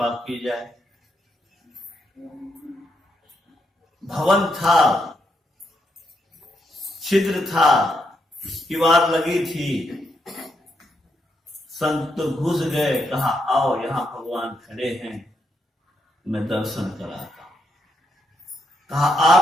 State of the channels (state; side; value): normal; both; correlation 0.79